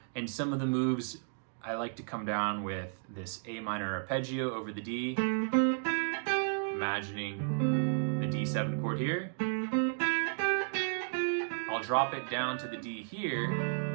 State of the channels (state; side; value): silent; left; digital silence